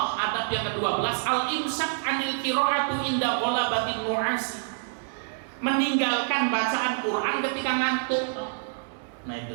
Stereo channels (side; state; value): left; silent; digital silence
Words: adab yang ke-12, al-imsak anil qiraatu inda ghalabatin nu'asi, meninggalkan bacaan Quran ketika ngantuk. Nah